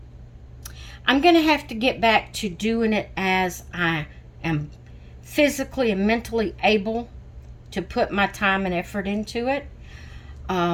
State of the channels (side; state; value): both; identical; correlation 1.00